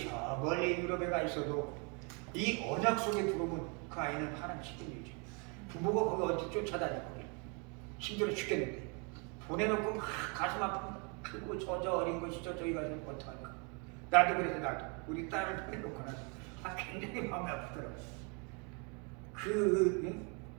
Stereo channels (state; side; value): quieter; left; 34.6 dB